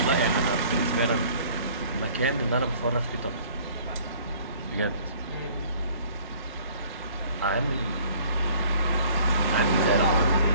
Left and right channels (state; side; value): inverted; both; correlation -0.53